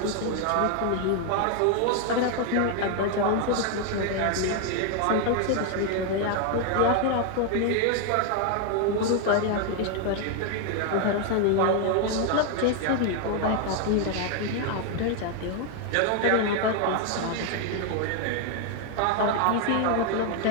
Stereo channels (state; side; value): different; both; correlation 0.00